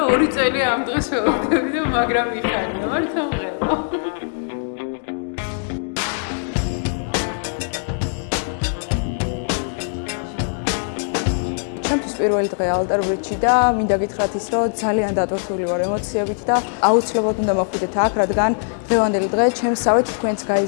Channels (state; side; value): silent; right; 65 dB below the other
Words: 2 წელი ამ დღეს ველოდები და მაგრამ მიხარია, მართა მღელა. ჩემთვის პირველი დღე ალტერ-ბრიჯში და მინდა გითხრათ ის, რომ ძალიან დატვირთული ვარ ემოციებით და აუცილებლად უნდა მოხვიდეთ აქ, რადგან დღევანდელი დღე ჩემსავე თქვენც